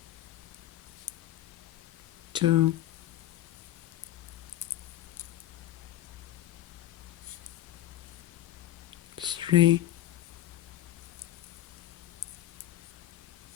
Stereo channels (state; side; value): quieter; right; 13.9 dB